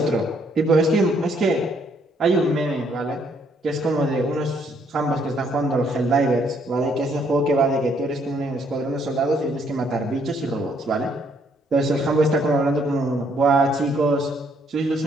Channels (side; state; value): both; normal; correlation 0.68